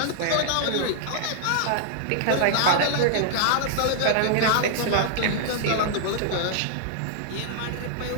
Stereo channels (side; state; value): both; different; correlation -0.01